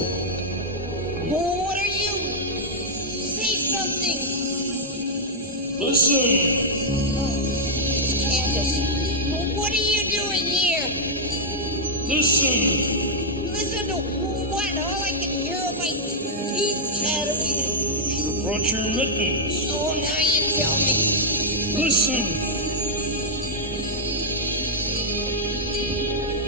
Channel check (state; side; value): normal; both; correlation -0.06